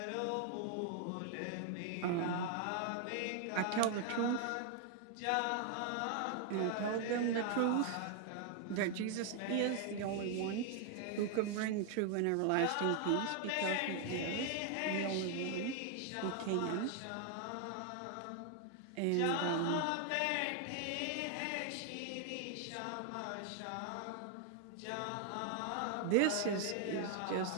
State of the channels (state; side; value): different; both; correlation 0.00